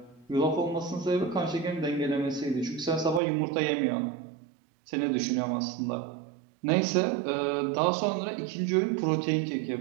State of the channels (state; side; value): drops out; left; at 3.2 s